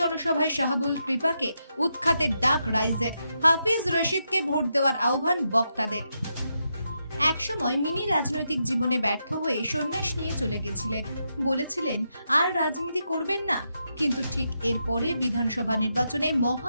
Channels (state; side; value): inverted; both; correlation -0.84